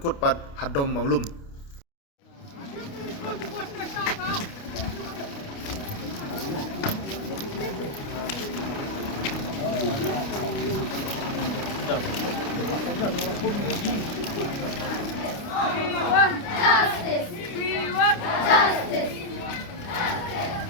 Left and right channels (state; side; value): late; right; 29 ms